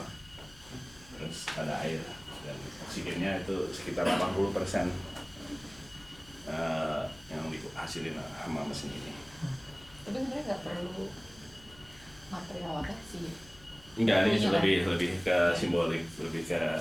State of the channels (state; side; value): noise; left; hum, 23 dB below the sound